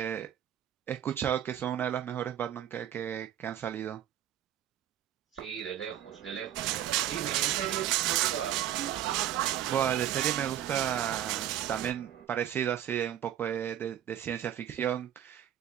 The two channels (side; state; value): left; quieter; 10.9 dB